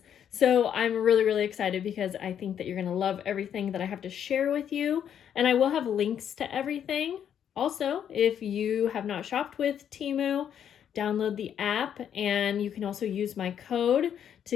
So I'm really excited because I think that you're going to love everything that I have to share with you, and I will have links to everything. Also, if you have not shopped with TEMU, download the app, and you can also use my code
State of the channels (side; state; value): right; quieter; 9.1 dB